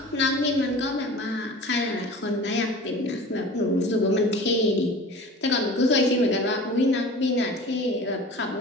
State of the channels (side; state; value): both; normal; correlation 0.39